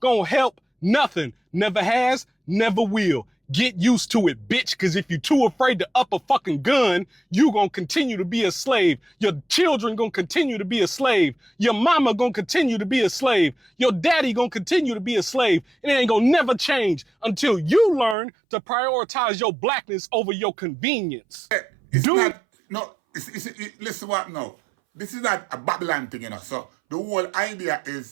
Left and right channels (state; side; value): drops out; left; at 18.2 s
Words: help nothing. Never has, never will. Get used to it, bitch, because if you're too afraid to up a fucking gun, you gonna continue to be a slave. Your children gonna continue to be a slave. Your mama gonna continue to be a slave. Your daddy gonna continue to be a slave. And it ain't gonna never change until you learn to prioritize your blackness over your convenience. It's not, no, listen what now. This is not a Babylon thing, you know. So the whole idea